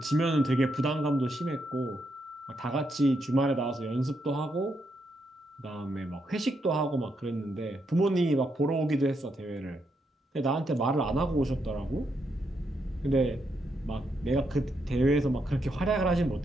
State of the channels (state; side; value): normal; both; correlation 0.80